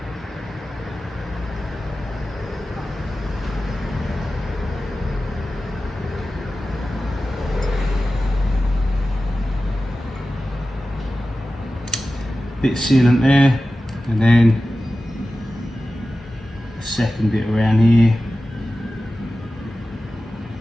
Bit of sealant there, and then a second bit around here.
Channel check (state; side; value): normal; both; correlation 0.94